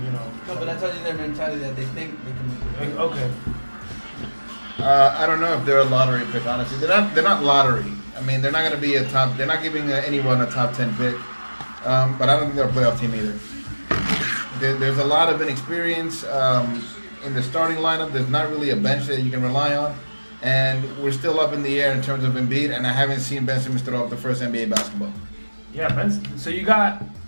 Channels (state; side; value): inverted; both; correlation -1.00